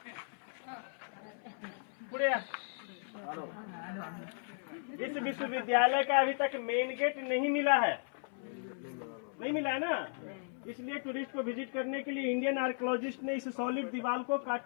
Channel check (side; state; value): right; silent; 54 dB below the other